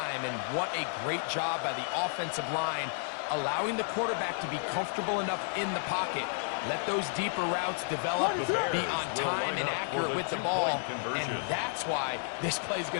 And what a great job by the offensive line, allowing the quarterback to be comfortable enough in the pocket. Let those deeper routes develop, be on time and accurate with the ball. And that's why this play is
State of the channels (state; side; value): silent; right; 57 dB below the other